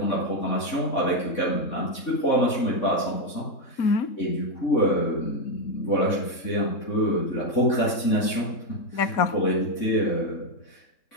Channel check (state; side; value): late; right; 3.7 ms